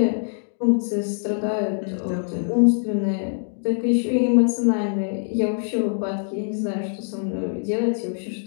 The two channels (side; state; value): right; silent; digital silence